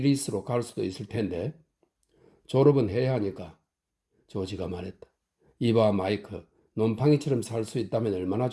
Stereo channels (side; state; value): both; identical; correlation 1.00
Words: 갈 수도 있을 텐데. 졸업은 해야 하니까. 조지가 말했다. 이봐 마이크, 놈팡이처럼 살 수 있다면 얼마나